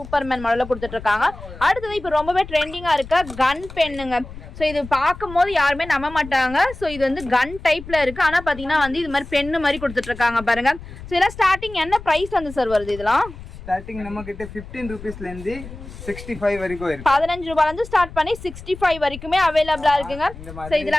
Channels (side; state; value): left; noise; rumble, 14 dB below the sound